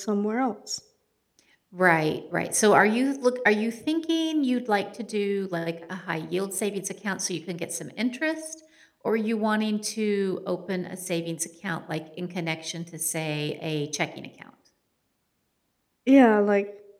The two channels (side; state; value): both; identical; correlation 1.00